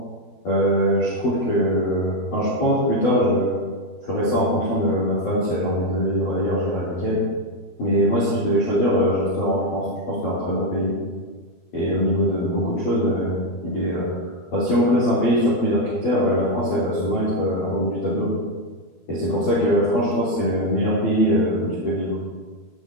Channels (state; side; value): late; right; 12 ms